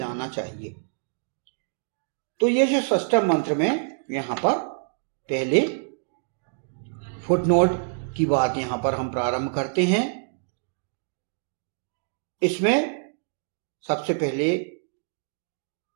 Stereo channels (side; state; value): left; silent; digital silence